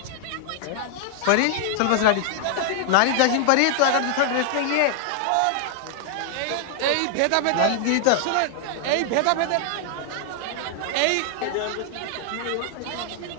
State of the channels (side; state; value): both; different; correlation -0.01